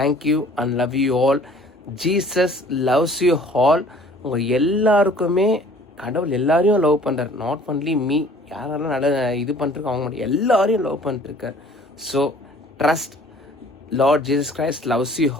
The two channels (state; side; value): normal; both; correlation 0.52